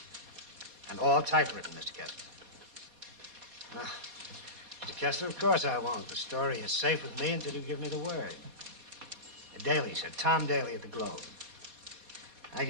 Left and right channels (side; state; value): left; late; 4.2 ms